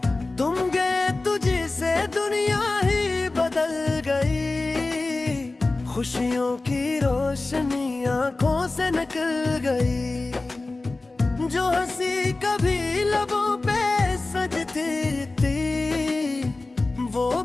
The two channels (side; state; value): right; quieter; 3.3 dB